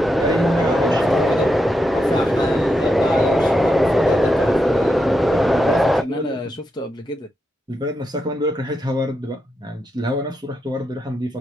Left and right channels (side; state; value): both; normal; correlation 0.85